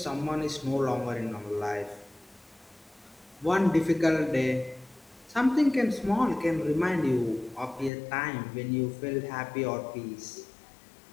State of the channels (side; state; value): right; drops out; at 7.9 s